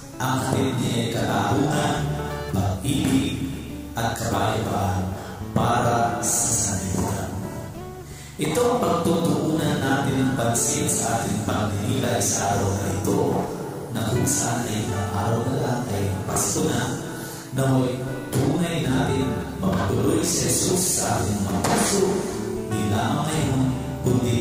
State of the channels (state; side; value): identical; both; correlation 1.00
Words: Ang hatid niya ay katarungan, pag-ibig at kapayapaan para sa sanlibutan. Ito ang pagtutuunan natin ng pansin sa ating pagdinilay sa araw na ito, na kung saan ay araw na lang ay Pasko na, naway tunay natin mapatuloy si Jesus sa ating mga puso, di lamang ngayon,